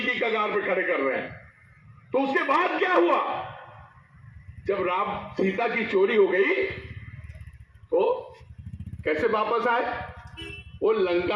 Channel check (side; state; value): both; identical; correlation 1.00